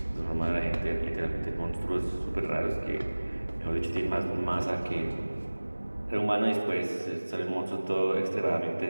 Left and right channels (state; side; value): inverted; both; correlation -1.00